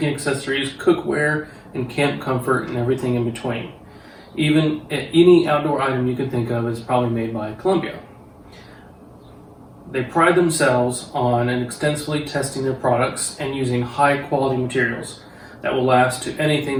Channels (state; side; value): identical; both; correlation 1.00